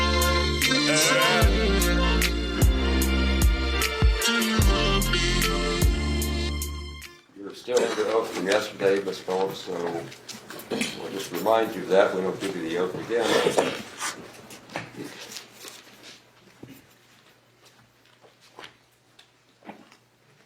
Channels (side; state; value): both; identical; correlation 1.00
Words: You're still under oath from yesterday, Ms. Phillips, so we'll just remind you of that. We don't give you the oath again.